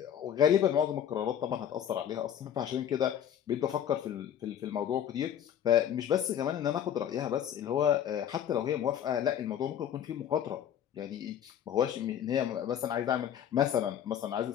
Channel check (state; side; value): quieter; right; 9.7 dB